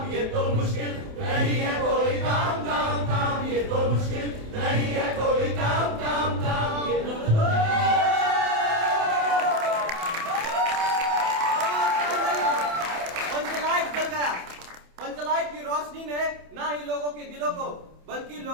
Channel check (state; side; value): late; left; 27 ms